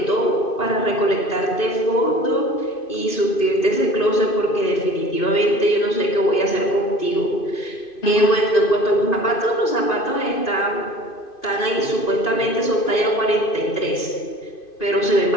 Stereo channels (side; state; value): right; late; 2.5 ms